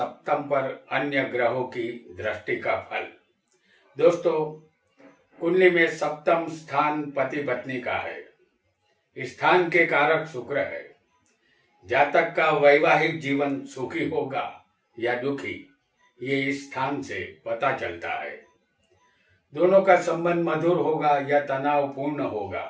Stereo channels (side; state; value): both; identical; correlation 1.00